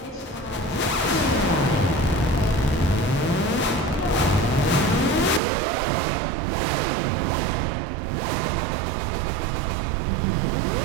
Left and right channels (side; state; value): left; drops out; at 5.4 s